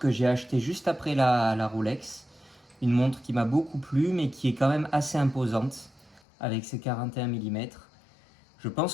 j'ai achetée juste après la Rolex. Une montre qui m'a beaucoup plu, mais qui est quand même assez imposante avec ses 41 mm. Je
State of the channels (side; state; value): right; drops out; at 6.2 s